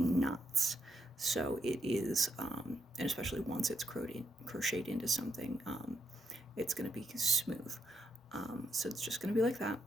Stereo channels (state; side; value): normal; both; correlation 0.81